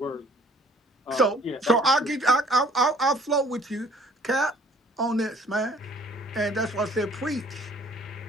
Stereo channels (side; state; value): both; normal; correlation 0.57